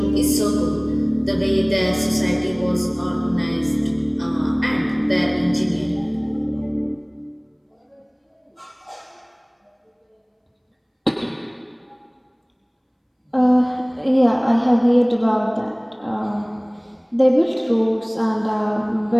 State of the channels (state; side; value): identical; both; correlation 1.00